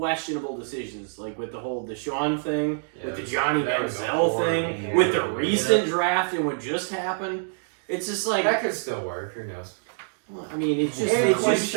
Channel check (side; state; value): left; silent; digital silence